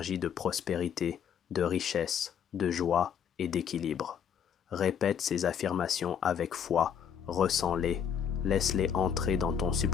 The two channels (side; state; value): right; quieter; 8.1 dB